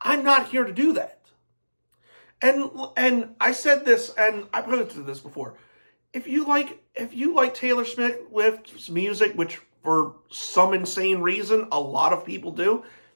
I'm not here to do that. And I said this, and I posted this before. If you like Taylor Swift's music, which for some insane reason a lot of people do,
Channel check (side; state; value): both; inverted; correlation -1.00